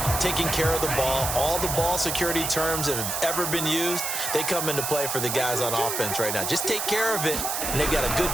taking care of the ball, all the ball security terms that have ever been used, they come into play for the guys on offense right now. Just take care of it, and they've got a good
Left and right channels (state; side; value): noise; right; hiss, 2 dB below the sound